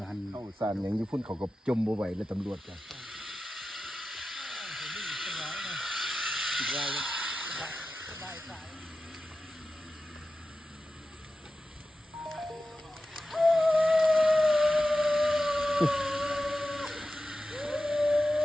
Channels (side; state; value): both; normal; correlation 0.93